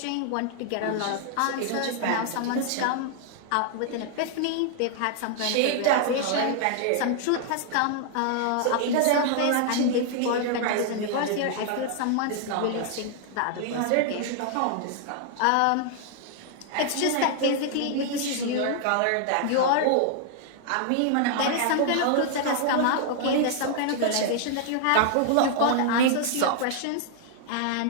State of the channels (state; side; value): different; both; correlation 0.00